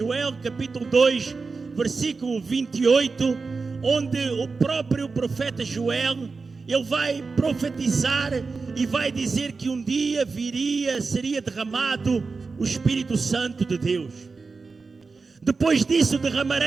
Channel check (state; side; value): quieter; left; 4.4 dB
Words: capítulo 2, versículo 28, onde o próprio profeta Joel, ele vai profetizar e vai dizer que um dia seria derramado o Espírito Santo de Deus. Depois disso